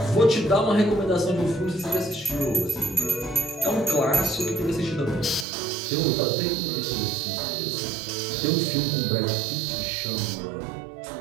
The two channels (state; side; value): drops out; left; at 5.5 s